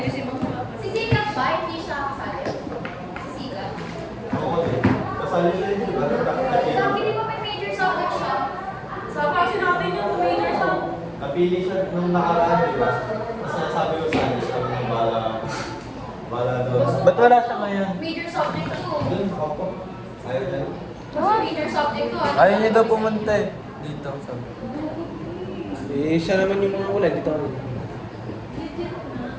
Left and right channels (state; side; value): identical; both; correlation 1.00